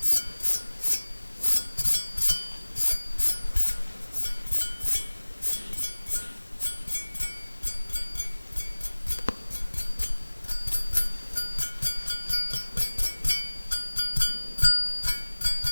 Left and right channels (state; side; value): inverted; both; correlation -1.00